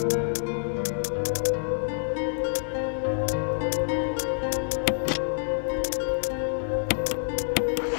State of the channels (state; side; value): silent; right; digital silence